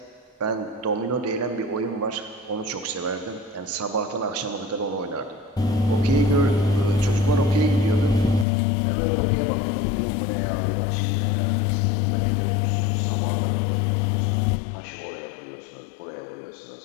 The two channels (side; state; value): right; drops out; at 8.5 s